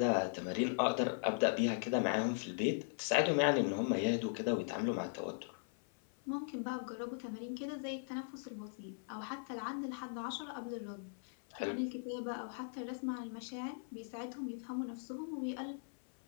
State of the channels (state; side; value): silent; right; 52 dB below the other